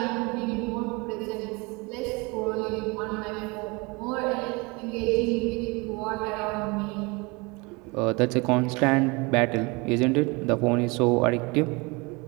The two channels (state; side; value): quieter; left; 27.1 dB